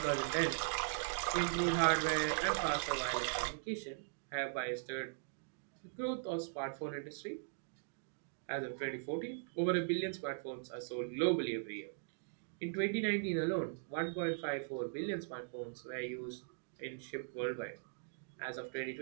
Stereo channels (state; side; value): silent; left; digital silence